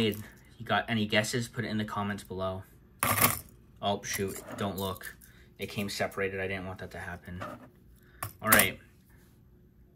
You got any guesses? Put it in the comments below. Oh, shoot. Don't look. It came separated. I didn't want that to happen. All right.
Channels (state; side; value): identical; both; correlation 1.00